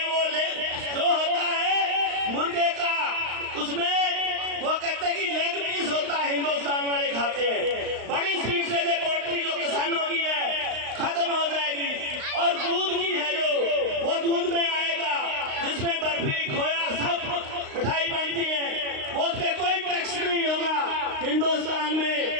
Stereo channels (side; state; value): left; late; 35 ms